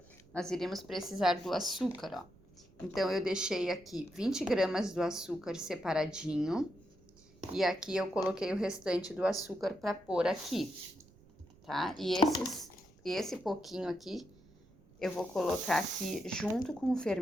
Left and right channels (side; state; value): right; noise; rumble, 27 dB below the sound